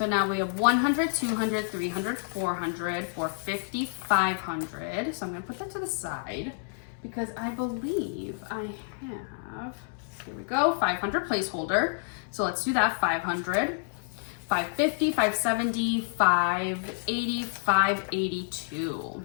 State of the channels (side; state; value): right; silent; 58 dB below the other